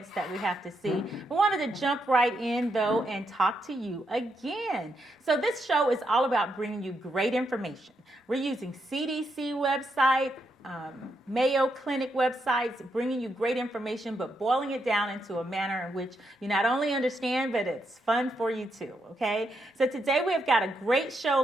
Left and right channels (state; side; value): normal; both; correlation 0.80